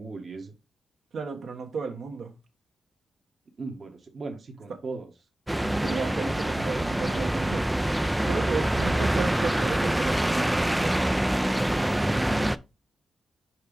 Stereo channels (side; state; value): both; normal; correlation 0.97